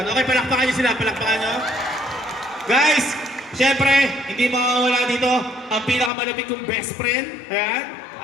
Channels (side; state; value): right; drops out; at 6.1 s